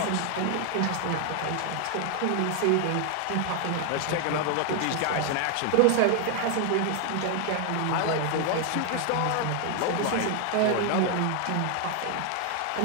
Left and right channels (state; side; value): different; both; correlation 0.00